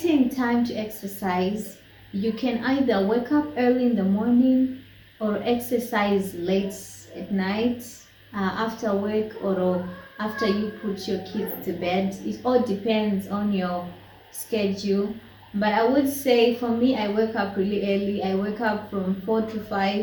time to exercise, you can either wake up early in the morning or exercise late at night after work or after you put your kids to bed. It all depends on your schedule. But I would say for me, I wake up really early. I wake up from 4 to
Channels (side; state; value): both; identical; correlation 1.00